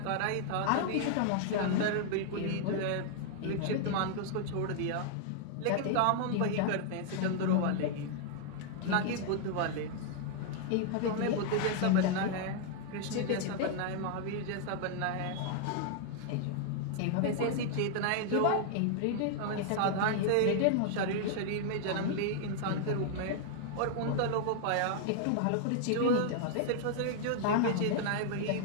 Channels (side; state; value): both; different; correlation 0.00